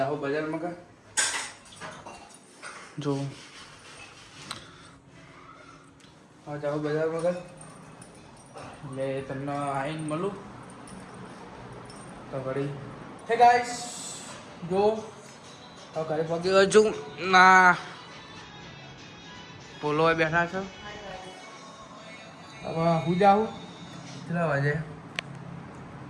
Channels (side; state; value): both; identical; correlation 1.00